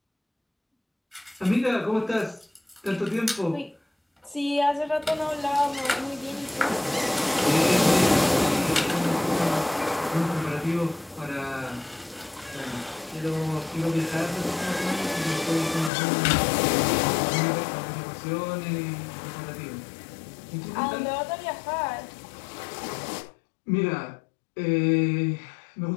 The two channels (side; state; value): right; drops out; at 15.9 s